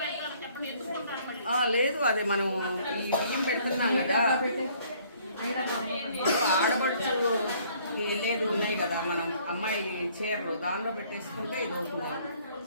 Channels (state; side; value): inverted; both; correlation -0.60